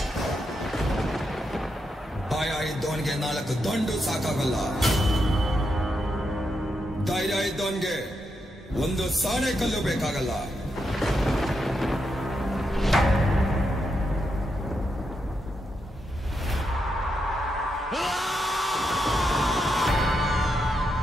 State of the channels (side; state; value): both; normal; correlation 0.83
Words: ಭಯ ಇದ್ದವನಿಗೆ 4 ದಂಡು ಸಾಕಾಗಲ್ಲ. ಧೈರ್ಯ ಇದ್ದವನಿಗೆ 1 ಸಾಣೆ ಕಲ್ಲು ಬೇಕಾಗಲ್ಲ.